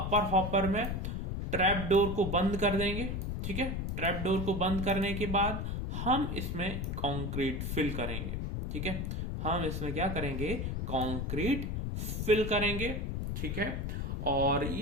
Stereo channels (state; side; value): noise; left; rumble, 2 dB below the sound